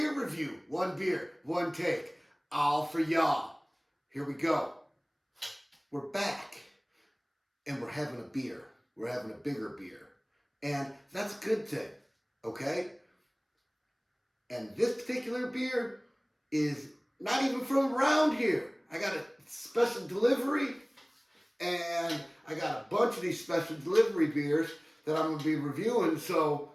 Review. One beer, one take, all for y'all. Here we go. We're back, and we're having a beer. We're having a bigger beer. And that's a good thing, okay? And this particular beer is not even from around here. I got a special delivery, and I got a bunch of these special delivery beers that I'm going to be reviewing. So,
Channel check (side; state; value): both; identical; correlation 1.00